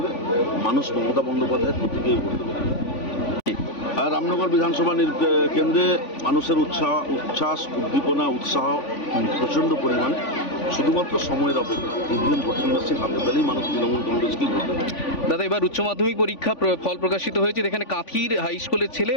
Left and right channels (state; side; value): late; right; 3.5 ms